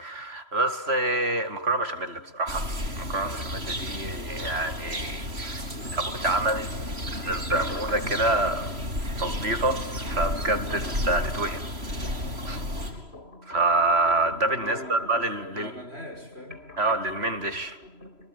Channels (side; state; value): left; late; 3.0 ms